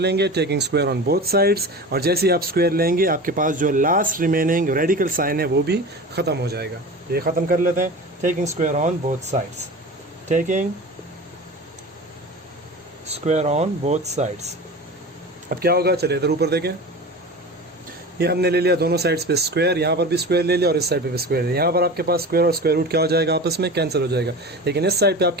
taking square on both sides, और जैसे ही आप स्क्वायर लेंगे आपके पास जो लास्ट रिमेनिंग रेडिकल साइन है वो भी ख़त्म हो जाएगा। ये ख़त्म कर लेते हैं। Taking square on both sides, taking square on both sides. अब क्या होगा, चलिए इधर ऊपर देखें। ये हमने ले लिया दोनों साइड्स पे स्क्वायर, यहाँ पर भी स्क्वायर ले लिया और इस साइड पे भी स्क्वायर है। यहाँ पर आपके पास स्क्वायर और स्क्वायर रूट क्या हो जाएगा, आपस में कैंसिल हो जाएगा। लेकिन इस साइड पे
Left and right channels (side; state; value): both; normal; correlation 0.32